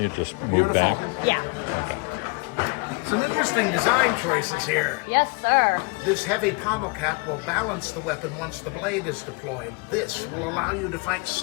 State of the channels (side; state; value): right; quieter; 29.7 dB